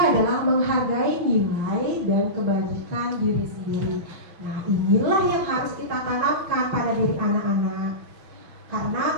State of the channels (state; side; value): late; left; 6.1 ms